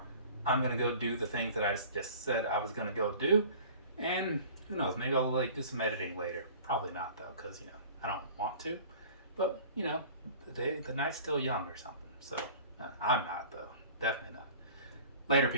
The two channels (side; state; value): both; inverted; correlation -0.44